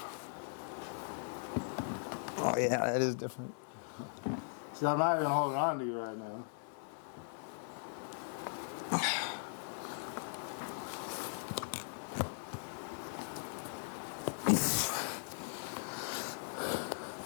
Oh yeah, that is different. See, I'm not even holding on to you right now.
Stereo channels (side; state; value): right; silent; digital silence